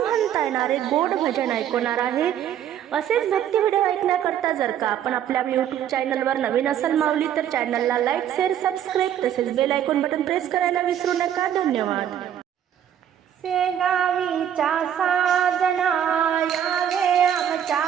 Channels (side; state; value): left; quieter; 10.0 dB